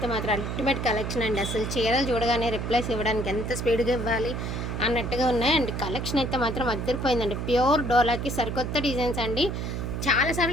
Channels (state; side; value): noise; right; hum, 3 dB below the sound